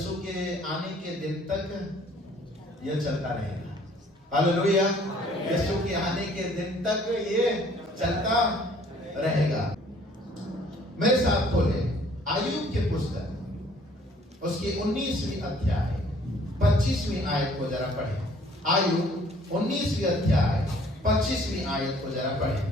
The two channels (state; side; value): normal; both; correlation 0.58